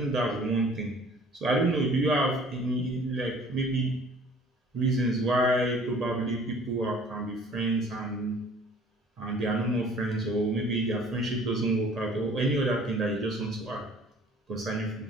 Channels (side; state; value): both; normal; correlation 0.52